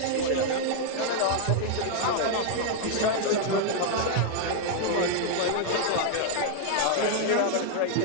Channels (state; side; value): different; both; correlation 0.00